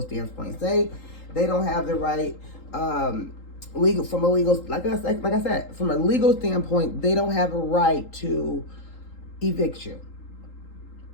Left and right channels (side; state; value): right; late; 3.8 ms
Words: standpoint, say they don't have the right, like I said, from a legal standpoint, they don't have a right to evict you.